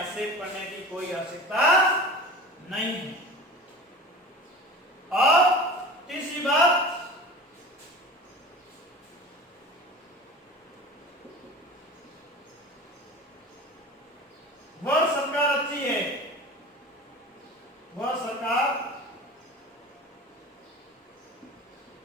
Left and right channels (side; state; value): both; normal; correlation 0.36